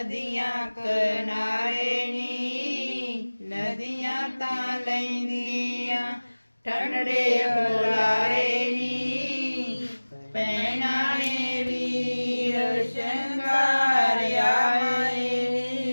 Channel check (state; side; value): inverted; both; correlation -1.00